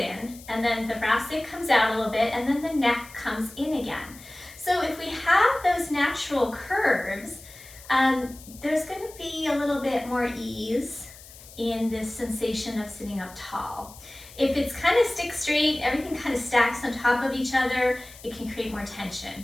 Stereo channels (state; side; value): noise; left; hiss, 19 dB below the sound